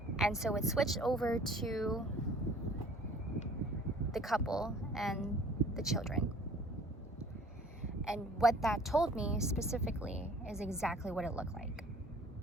And so it switched over to the couple and the children. And what that told me specifically is exactly what it looked like.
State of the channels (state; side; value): normal; both; correlation 0.52